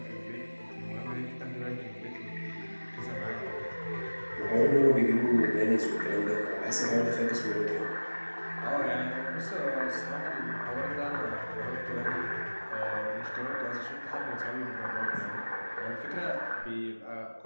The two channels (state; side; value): inverted; both; correlation -1.00